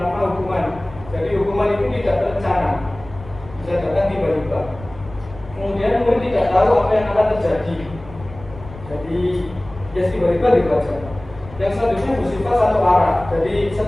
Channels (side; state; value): left; noise; rumble, 17 dB below the sound